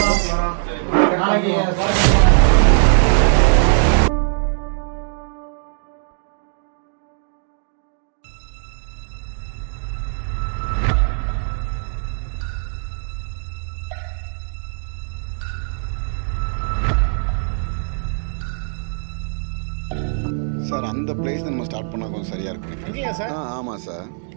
சார், அந்த பிளேஸ் நம்ம ஸ்டார்ட் பண்ணால் கொஞ்சம் சரியாக இருக்கும். இல்லையா சார்? ஆமாம் சார்.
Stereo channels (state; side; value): silent; left; digital silence